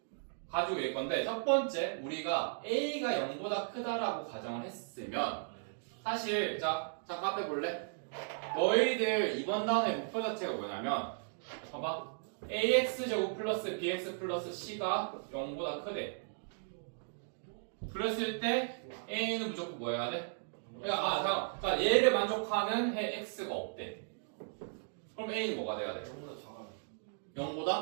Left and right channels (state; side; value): silent; left; digital silence